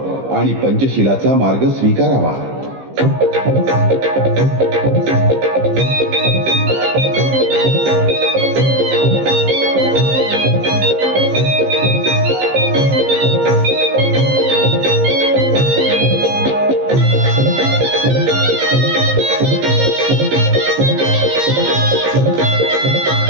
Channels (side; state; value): left; late; 15 ms